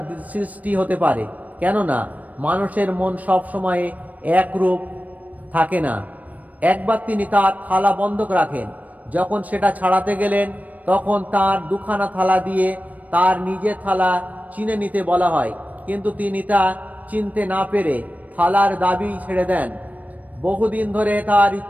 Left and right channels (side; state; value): left; late; 0.073 ms